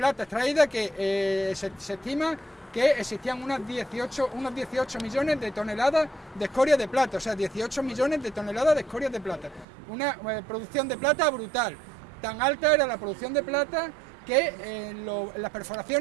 extraída que se estima que existían unos 18 millones de toneladas de escoria de plata, o sea, 18 millones de toneladas de escoria de plata. Una producción de plata brutal. Tan alta era la producción de plata que en las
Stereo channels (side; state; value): left; drops out; at 9.7 s